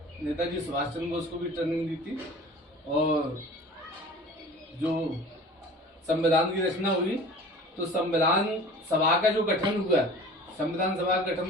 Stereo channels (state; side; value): normal; both; correlation 0.42